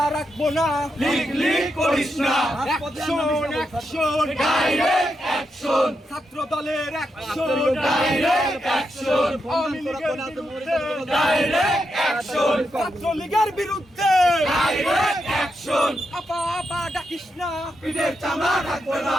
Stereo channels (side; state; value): both; normal; correlation 0.84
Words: রাখবো না। লিক লিক করিস না অ্যাকশন অ্যাকশন ডাইরেক্ট অ্যাকশন ছাত্র দলের অ্যাকশন ডাইরেক্ট অ্যাকশন আওয়ামী লীগের বিরুদ্ধে, ডাইরেক্ট অ্যাকশন ছাত্রলীগের বিরুদ্ধে ডাইরেক্ট অ্যাকশন আপা আপা ডাকিস না, পিঠের চামড়া থাকবে না